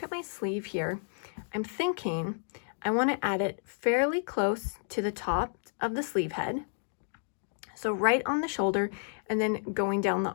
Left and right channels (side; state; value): right; silent; digital silence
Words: at my sleeve here, I'm thinking I wanna add it fairly close to the top of the sleeve head. So right on the shoulder and then going down the